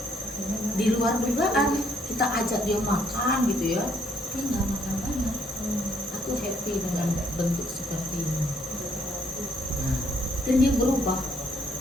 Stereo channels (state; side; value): normal; both; correlation 0.68